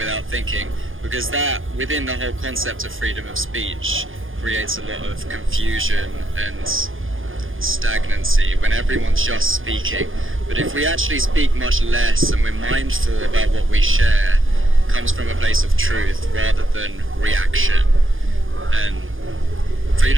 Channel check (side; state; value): left; late; 0.59 ms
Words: thinking, because that, within the whole concept of freedom of speech, creates a lot of confusion and stagnancy when everyone's just speaking. But if we actually speak much less and we're mindful about what we share, it comes from a place of truth rather than reaction. And